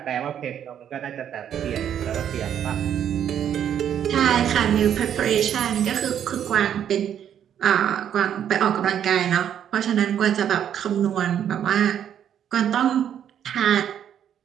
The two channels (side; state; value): left; quieter; 9.5 dB